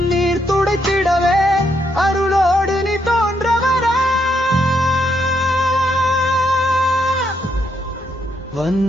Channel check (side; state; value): both; normal; correlation 0.76